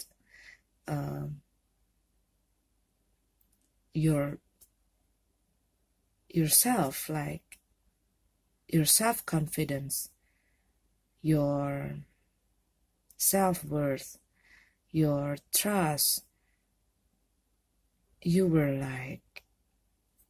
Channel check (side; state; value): both; identical; correlation 1.00